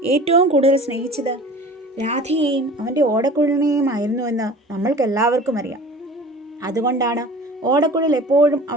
ഏറ്റവും കൂടുതൽ സ്നേഹിച്ചത് രാധയെയും അവൻ്റെ ഓടക്കുഴലിനെയുമായിരുന്നുവെന്ന് നമ്മൾക്കെല്ലാവർക്കും അറിയാം. അതുകൊണ്ടാണ് ഓടക്കുഴൽ എപ്പോഴും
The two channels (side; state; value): both; normal; correlation 0.42